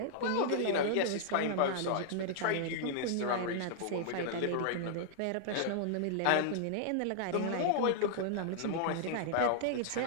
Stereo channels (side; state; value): both; different; correlation -0.01